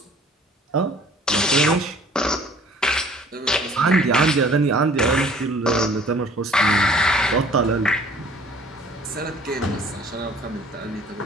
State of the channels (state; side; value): normal; both; correlation 0.53